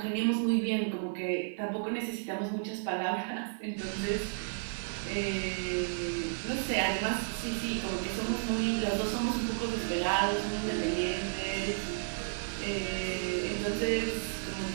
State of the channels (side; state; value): left; silent; 56 dB below the other